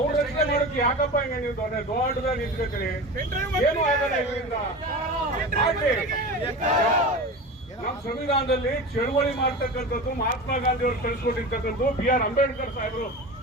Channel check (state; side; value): normal; both; correlation 0.30